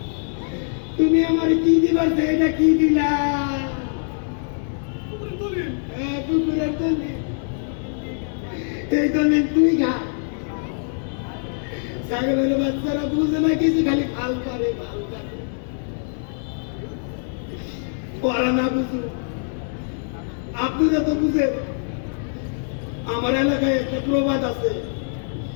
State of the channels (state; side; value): silent; right; 63 dB below the other